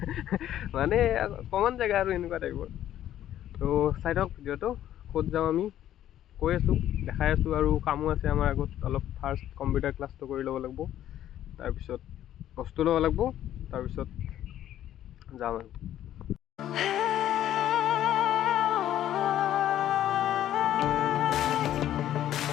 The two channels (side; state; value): right; quieter; 11.9 dB